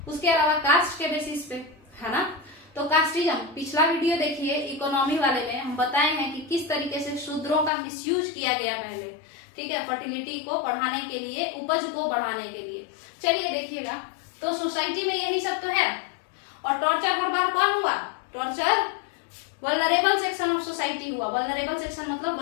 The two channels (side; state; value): right; drops out; at 7.7 s